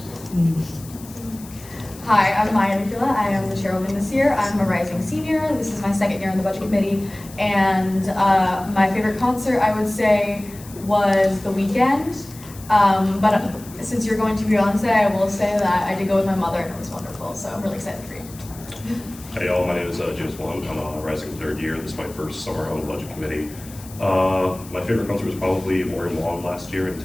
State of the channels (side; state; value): left; noise; hiss, 19 dB below the sound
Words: Hi, I'm Maya Kila. I am the chairwoman this year. I'm a rising senior. This is my second year on the budget committee. And my favorite concert, I would say, was The Weeknd. But since you're going to Beyonce, I will say that I did go with my mother and it was wonderful. So I'm really excited for you. Hey y'all, my name is James Wong. I'm a rising third year. This is my first summer on the budget committee. My favorite concert was probably Maureen Wong last year in